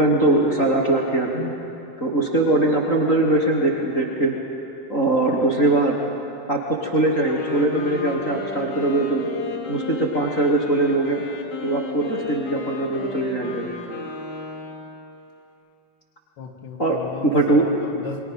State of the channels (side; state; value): right; late; 3.9 ms